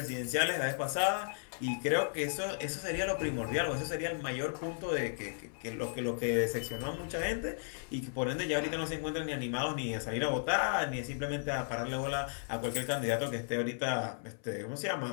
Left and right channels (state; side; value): silent; right; 55 dB below the other